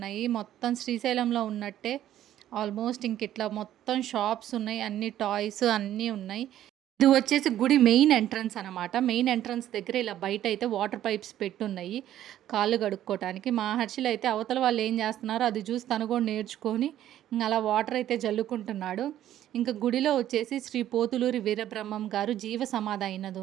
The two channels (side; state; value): left; quieter; 12.1 dB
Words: మొత్తం శ్రీశైలంలో ఉన్నట్టే. ఆల్మోస్ట్ ఇంక ఇట్లా మొత్తం షాప్స్ ఉన్నాయి, అన్ని టాయ్స్ అన్నీ ఉన్నాయి. ఇది వచ్చేసి గుడి మెయిన్ ఎంట్రన్స్ అనమాట. మెయిన్ ఎంట్రన్స్ దగ్గర ఇలా బయట అయితే వాటర్ పైప్స్ పెట్టున్నాయి కాళ్ళు కడుక్కోవటానికి. మా హర్షిల్ అయితే అవతల వాళ్ళు ఏం చేస్తున్నారో అది చూసి తను కూడా నేర్చుకొని ఇంక అలా వాటర్ అయితే జల్లుకుంటున్నాడు. ఇంకా గుడిలో వచ్చేసి శ్రీ పోతులూరి వీరబ్రహ్మం గారు జీవ సమాధి అయినది